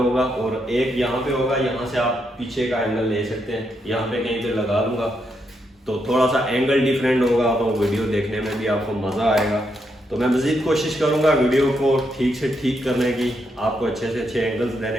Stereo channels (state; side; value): normal; both; correlation 0.80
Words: और एक यहाँ पे होगा, यहाँ से आप पीछे का एंगल ले सकते हैं, यहाँ पे कहीं पे लगा दूंगा, तो थोड़ा सा एंगल डिफरेंट होगा, तो वीडियो देखने में भी आपको मज़ा आएगा। तो मैं मज़ीद कोशिश करूँगा वीडियो को ठीक से ठीक करने की, आपको अच्छे से अच्छे एंगल्स